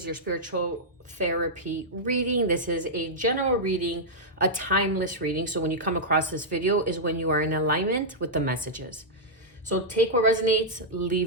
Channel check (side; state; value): both; normal; correlation -0.08